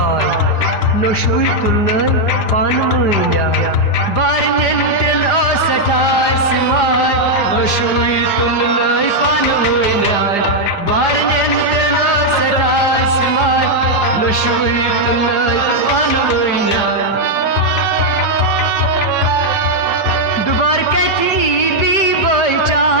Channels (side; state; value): right; late; 5.0 ms